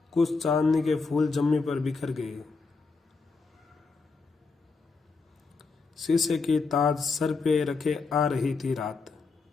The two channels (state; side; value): quieter; right; 4.3 dB